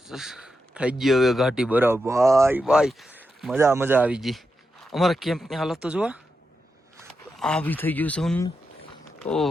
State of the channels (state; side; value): normal; both; correlation 0.87